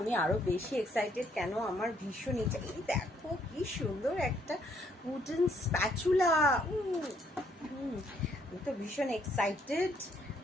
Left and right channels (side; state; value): both; normal; correlation 0.69